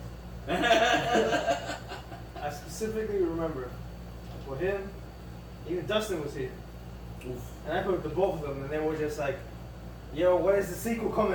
I specifically remember for him, even Dustin was here. Oof. And I put the both of them, and they were just like, yo, when is the sequel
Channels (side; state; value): both; identical; correlation 1.00